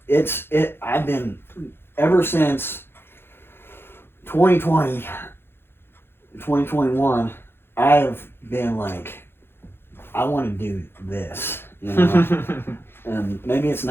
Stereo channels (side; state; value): right; late; 0.11 ms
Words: I've been, ever since 2020, 2021, I have been like, I want to do this, you know. And maybe it's